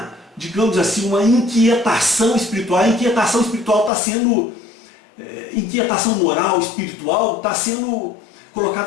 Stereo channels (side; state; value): right; drops out; at 3.9 s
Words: digamos assim, uma inquietação espiritual. A inquietação espiritual está sendo, inquietação moral, espiritual, está sendo